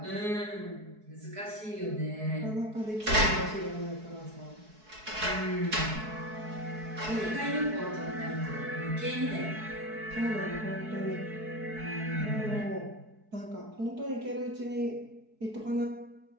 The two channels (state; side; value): late; left; 4.6 ms